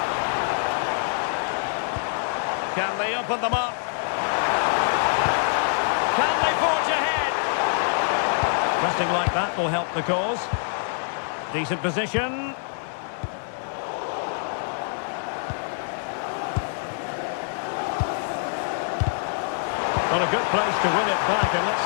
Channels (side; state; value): right; silent; 62 dB below the other